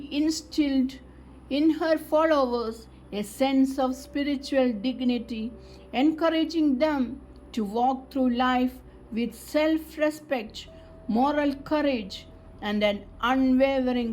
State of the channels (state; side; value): identical; both; correlation 1.00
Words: instilled in her followers a sense of spiritual dignity, encouraging them to walk through life with self respect, moral courage, and an